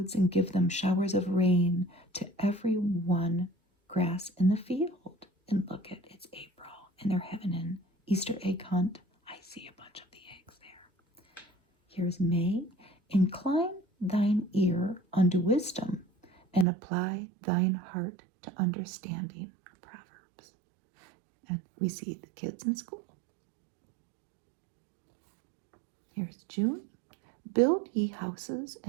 and give them showers of rain to every one grass in the field. And look at, it's April, and they're having an Easter egg hunt. I see a bunch of the eggs there. Here's May. Incline thine ear unto wisdom, and apply thine heart to understanding. Proverbs. And we see the kids in school. Here's June. Build ye houses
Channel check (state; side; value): drops out; left; at 16.7 s